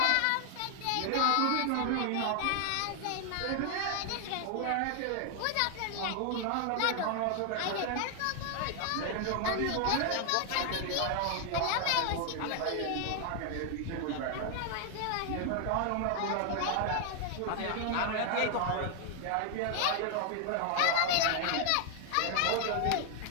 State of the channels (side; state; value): both; different; correlation 0.00